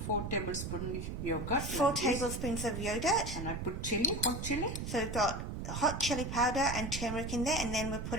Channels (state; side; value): noise; right; rumble, 5 dB below the sound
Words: 4 tablespoons yogurt. 4 tablespoons of yogurt. And I put chili, hot chili. So we've got hot chili powder and turmeric in there, and then we're